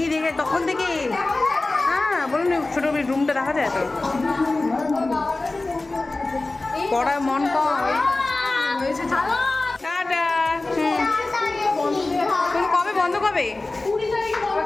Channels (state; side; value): quieter; right; 3.1 dB